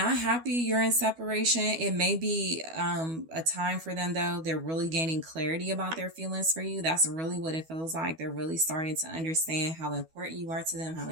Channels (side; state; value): left; late; 12 ms